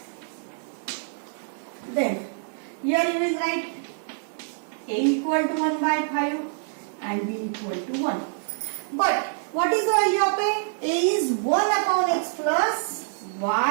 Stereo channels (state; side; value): silent; left; digital silence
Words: Then here you will write a equal to 1 by 5 and b equal to 1. But what is the value of a? A is 1 upon x plus